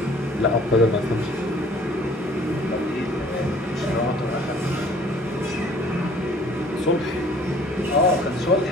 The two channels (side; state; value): both; normal; correlation 0.54